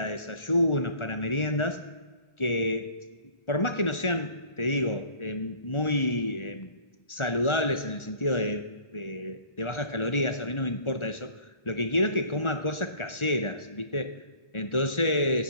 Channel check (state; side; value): late; right; 1.4 ms